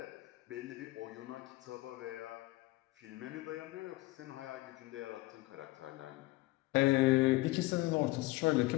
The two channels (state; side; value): quieter; right; 20.4 dB